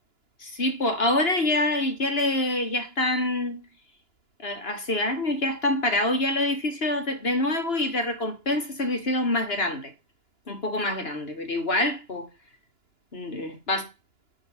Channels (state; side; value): late; right; 2.9 ms